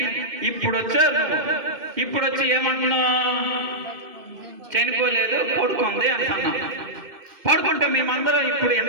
ఇప్పుడు వచ్చారు నువ్వు, ఇప్పుడు వచ్చి ఏమంటున్నావు, చనిపోలేదు పడుకుంది అంటున్నాం. పడుకుంటే మేమందరం ఇప్పుడు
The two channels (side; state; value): left; late; 2.6 ms